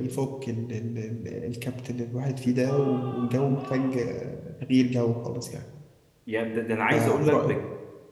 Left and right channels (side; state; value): both; identical; correlation 1.00